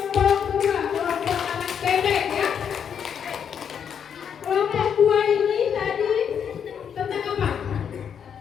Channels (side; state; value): right; quieter; 7.8 dB